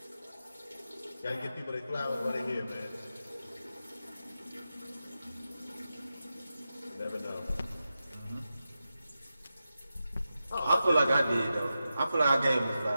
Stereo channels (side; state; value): both; inverted; correlation -0.91